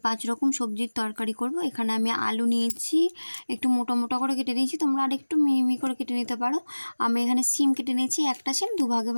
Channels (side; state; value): both; inverted; correlation -1.00